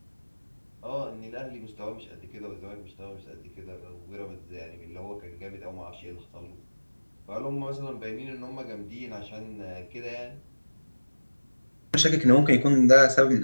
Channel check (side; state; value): both; inverted; correlation -1.00